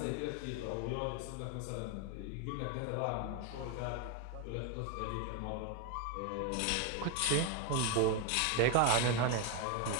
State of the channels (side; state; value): both; different; correlation 0.02